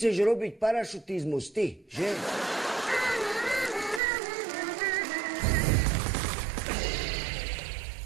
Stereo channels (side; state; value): left; drops out; at 4.0 s